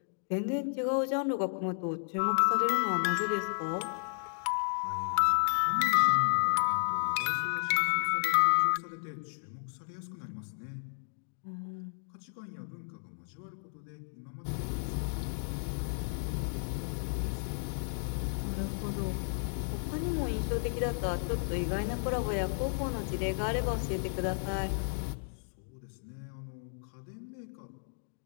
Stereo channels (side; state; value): right; silent; digital silence